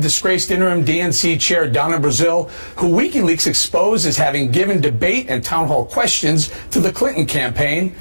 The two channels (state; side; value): inverted; both; correlation -1.00